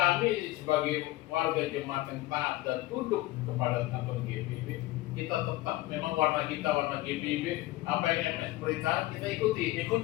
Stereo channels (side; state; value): right; quieter; 17.9 dB